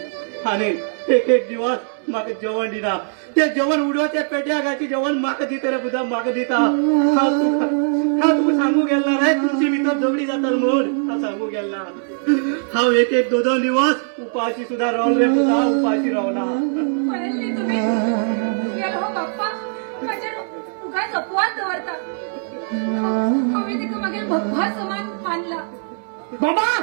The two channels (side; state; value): left; silent; digital silence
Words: आनी एक एक दिवस म्हाका जेवण दिना ते जेवण उडोवचे पेट्या घालचे जेवण म्हाका दिता रे पुता म्हाका दिता हांव तुका सांगू गेलो ना रे तुमची भितर झगडी जाता म्हूण हांव सांगू गेलो ना हांव एक एक दोन दिवस उपाशी सुद्धा रावलो रे पुता उपाशी रावला कळले तुम्ही गेलो हो बाप्पा माझे उगाच अपवाद दवरता हांवें तेका मागीर भगवा समान मानला बाबा